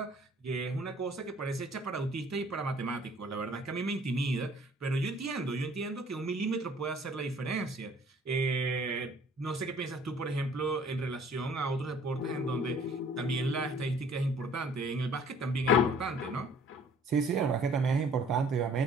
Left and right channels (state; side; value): normal; both; correlation 0.55